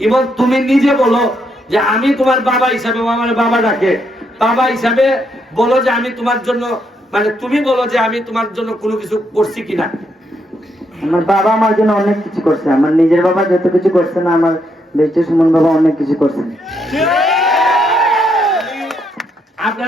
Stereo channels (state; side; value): normal; both; correlation 0.77